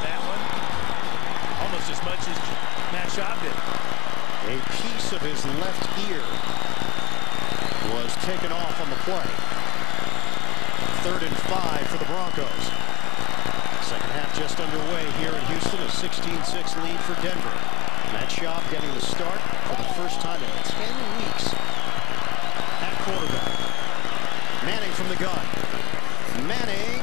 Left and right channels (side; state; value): right; quieter; 17.8 dB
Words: one. Almost as much as Matt Schaub did. A piece of his left ear was taken off on the play. 3rd and 5 for the Broncos. Second half just underway here in Houston. A 16-6 lead for Denver. Matt Schaub getting the start for the first time in 10 weeks at quarterback. Manning from the gun. Manning.